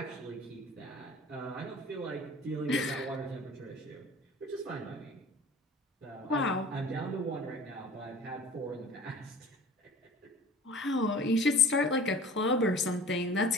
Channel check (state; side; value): normal; both; correlation 0.42